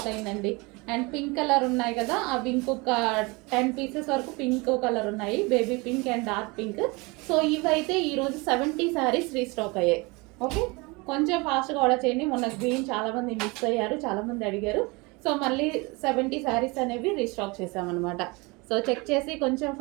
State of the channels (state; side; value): quieter; left; 26.3 dB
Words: అయిందండి. అండ్ పింక్ కలర్ ఉన్నాయి కదా, అవి ఇంకొక 10 పీసెస్ వరకు పింక్ కలర్ ఉన్నాయి, baby pink and dark pink. So ఇవైతే ఈరోజు 70 శారీస్ రీస్టాక్ అయ్యాయి. ఓకే, కొంచెం ఫాస్ట్గా ఆర్డర్ చేయండి. మొన్న గ్రీన్ చాలామంది మిస్ అయ్యారు, చాలామంది అడిగారు. సో మళ్ళీ 70 శారీస్ అనేవి రీస్టాక్ చేసామన్నమాట. సో చెక్ చేసి కొంచెం